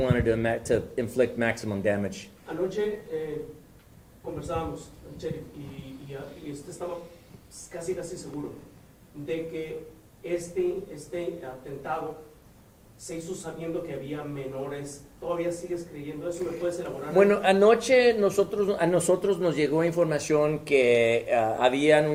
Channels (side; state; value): both; identical; correlation 1.00